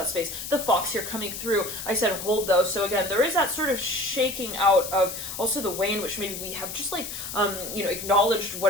The fox here coming through, I said hold those. So again, there is that sort of shaking out of also the way in which maybe we have just like, you know, acknowledged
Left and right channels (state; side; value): noise; left; hiss, 7 dB below the sound